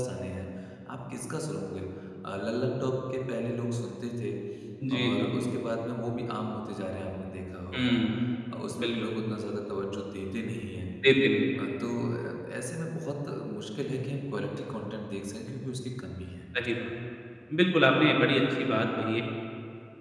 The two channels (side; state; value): both; identical; correlation 1.00